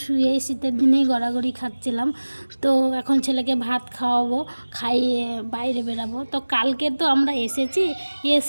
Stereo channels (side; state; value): both; inverted; correlation -1.00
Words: শুয়ে শীতের দিনেই গড়াগড়ি খাচ্ছিলাম। তো এখন ছেলেকে ভাত খাওয়াবো, খাইয়ে বাইরে বেরাবো। তো কালকে তো আমরা এসেছি,